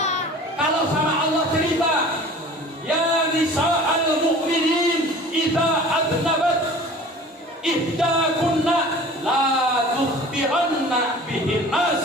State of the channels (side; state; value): both; normal; correlation 0.43